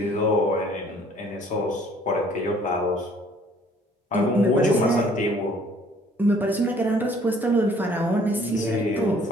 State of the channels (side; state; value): both; normal; correlation 0.58